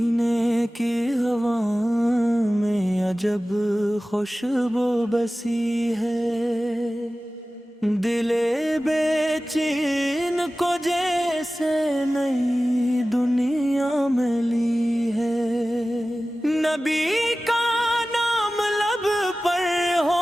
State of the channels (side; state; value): both; normal; correlation 0.96